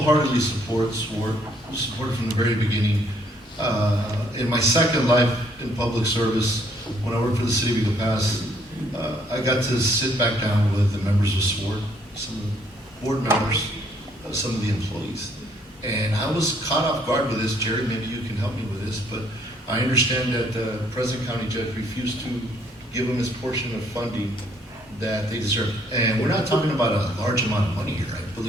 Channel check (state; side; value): normal; both; correlation 0.66